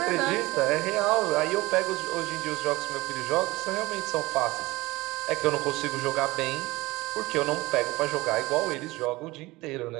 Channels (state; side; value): quieter; left; 20.7 dB